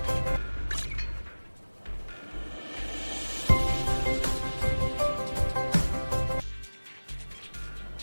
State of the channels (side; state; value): both; inverted; correlation -1.00